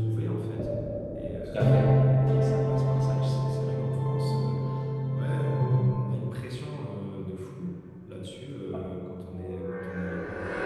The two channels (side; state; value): both; identical; correlation 1.00